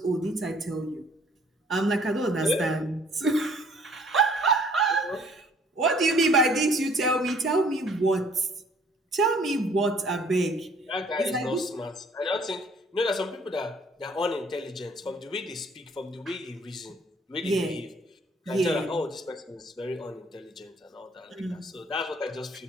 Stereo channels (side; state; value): both; normal; correlation 0.58